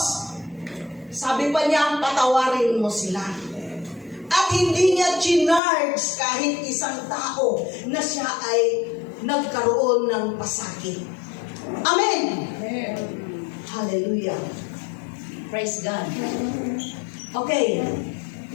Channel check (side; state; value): right; drops out; at 5.6 s